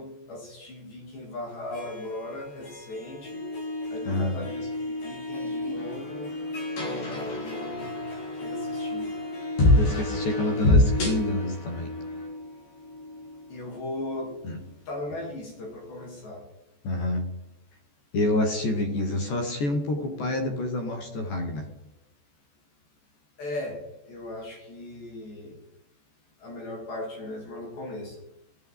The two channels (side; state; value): right; late; 14 ms